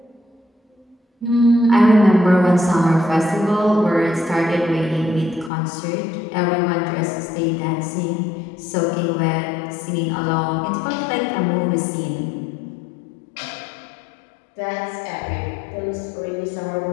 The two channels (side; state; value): right; drops out; at 5.5 s